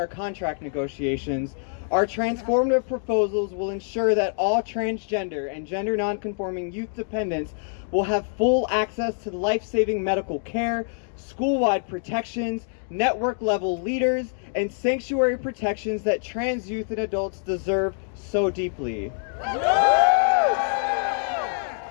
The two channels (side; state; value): right; silent; digital silence